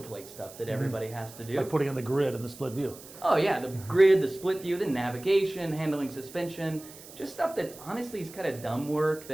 stuff that everybody has to do. Like putting in the grid and the split view. Oh yeah, the grid, the split view, the navigation, handling suspension, just stuff that honestly is kind of dumb work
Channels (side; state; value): right; noise; hiss, 18 dB below the sound